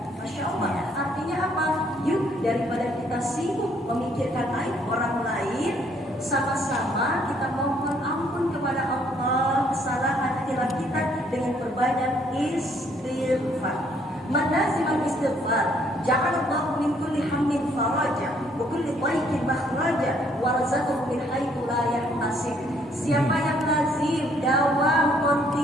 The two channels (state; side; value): normal; both; correlation 0.66